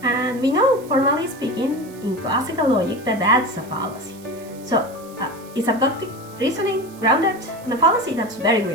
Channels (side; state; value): right; noise; hiss, 23 dB below the sound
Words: And we know, formally speaking, in classical logic, that that's a fallacy. So, is abductive reasoning grounded in a fallacy? That's very